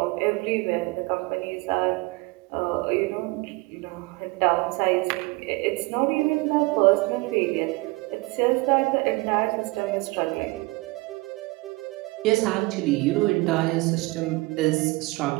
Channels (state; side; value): quieter; left; 24.0 dB